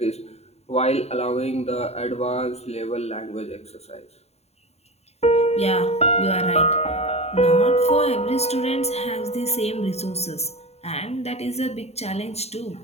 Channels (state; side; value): late; right; 0.31 ms